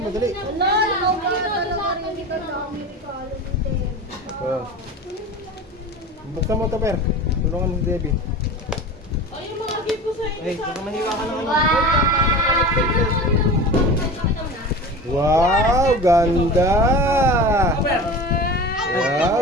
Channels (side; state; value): both; normal; correlation 0.33